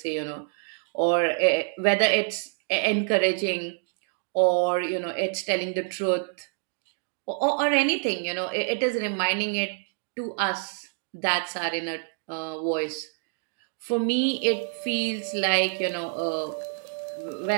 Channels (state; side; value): silent; left; 57 dB below the other